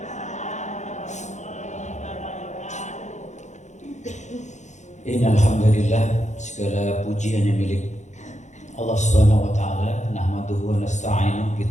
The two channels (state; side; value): late; right; 0.34 ms